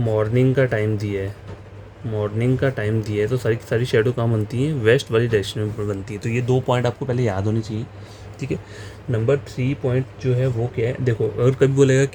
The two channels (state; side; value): identical; both; correlation 1.00